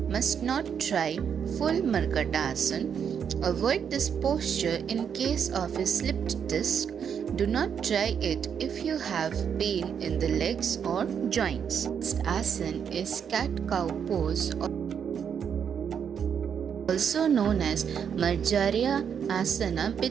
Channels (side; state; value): left; quieter; 7.6 dB